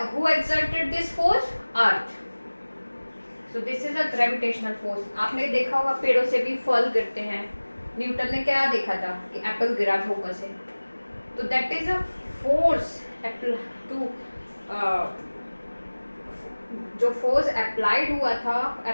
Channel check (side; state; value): both; inverted; correlation -1.00